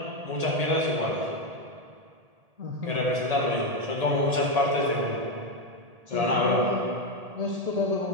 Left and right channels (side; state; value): left; late; 1.8 ms